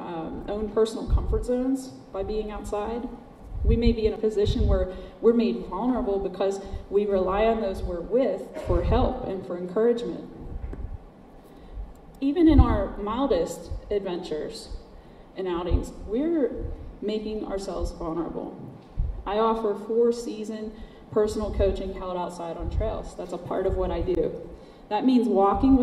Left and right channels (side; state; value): both; identical; correlation 1.00